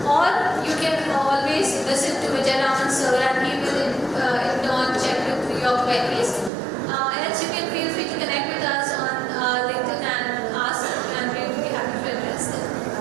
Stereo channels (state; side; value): drops out; left; at 6.5 s